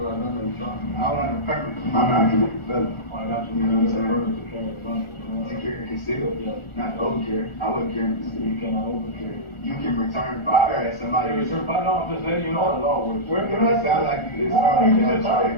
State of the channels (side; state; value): right; late; 1.4 ms